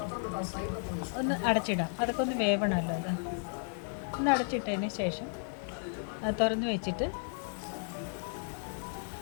ഒന്ന് അടച്ചിടാം. അതൊക്കെ ഒന്ന് വേവണമല്ലോ. അത് ഒന്ന് അടച്ചിട്ടതിന് ശേഷം അത് തുറന്ന് വെച്ചിട്ട്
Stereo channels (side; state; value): right; silent; 55 dB below the other